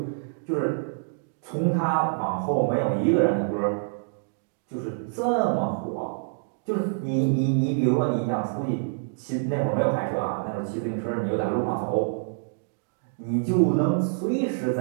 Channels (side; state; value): left; silent; digital silence